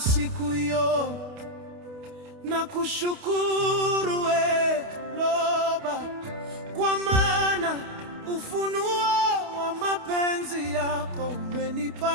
hiyo nakushukuru we Loba, kwa maana ufunuo wa mapenzi yako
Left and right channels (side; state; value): left; late; 28 ms